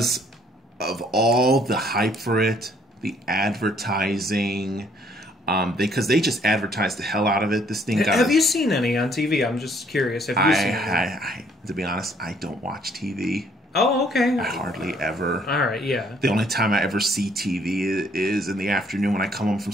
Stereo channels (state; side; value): normal; both; correlation 0.64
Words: of all the hype for it, the advertising... because they just advertised the hell out of it. This thing got... Have you seen any on TV? I'm just curious. Have you seen any? To be honest, I don't watch TV. Oh, okay. I hardly ever. All right, yeah. The only time I ever see TV is in the afternoon when I come home from